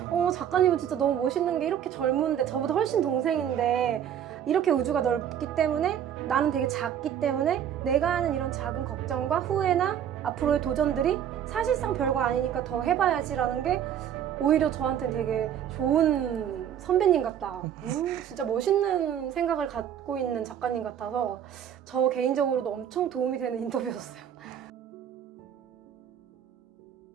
작가님은 진짜 너무 멋있는 게 이렇게 젊은데 저보다 훨씬 동생인데 이렇게 우주가 넓기 때문에 나는 되게 작기 때문에 내가 하는 이런 작은 걱정과 후회나 앞으로의 도전들이 사실상 별거 아니니까 더 해봐야지라는 게 오히려 저한테는 되게 좋은 선배님 같다. 진짜 멋있는 생각을 갖고 있는 작가님 같아서 저 개인적으로도 엄청 도움이 되는 인터뷰였어요.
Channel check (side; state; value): left; quieter; 9.5 dB